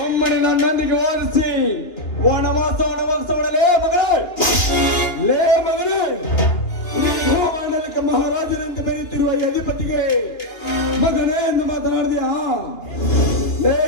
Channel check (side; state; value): right; late; 2.9 ms